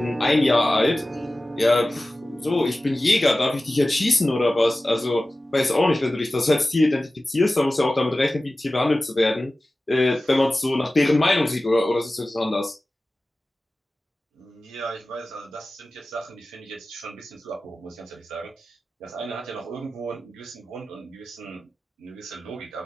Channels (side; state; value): both; normal; correlation 0.96